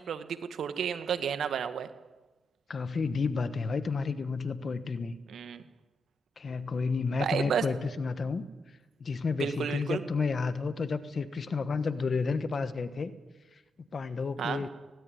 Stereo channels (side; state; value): both; normal; correlation 0.82